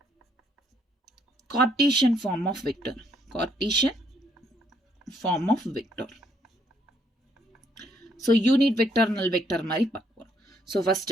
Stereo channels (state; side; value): normal; both; correlation 0.70